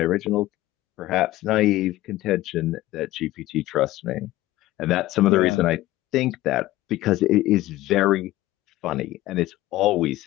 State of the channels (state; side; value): quieter; right; 16.4 dB